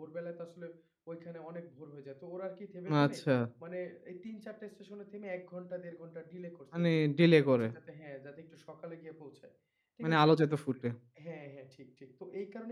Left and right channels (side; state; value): both; identical; correlation 1.00